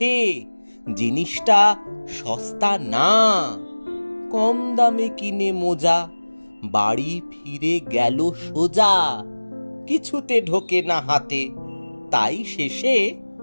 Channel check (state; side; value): inverted; both; correlation -1.00